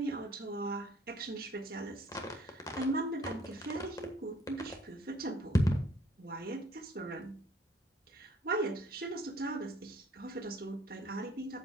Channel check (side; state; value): both; normal; correlation 0.59